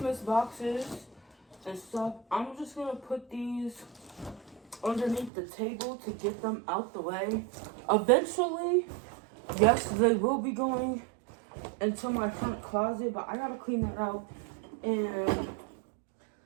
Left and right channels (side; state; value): left; drops out; at 5.3 s